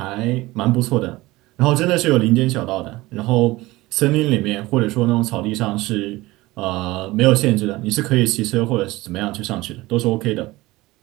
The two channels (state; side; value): quieter; left; 19.7 dB